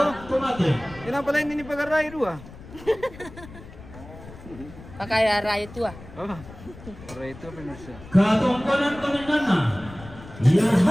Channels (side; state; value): left; noise; rumble, 17 dB below the sound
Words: tumate. Kenapa pala ini pagaray dua? Pakai raya itu ah. Oh, pagaray itu pemirsa. Katongkonan komenana,